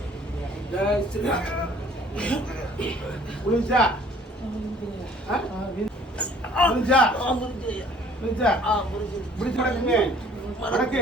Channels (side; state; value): both; normal; correlation 0.55